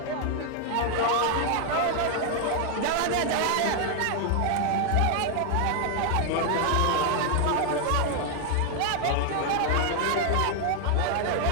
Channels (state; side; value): different; both; correlation 0.00